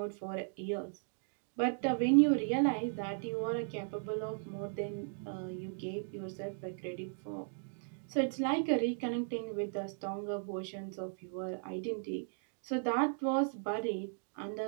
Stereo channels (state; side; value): silent; left; digital silence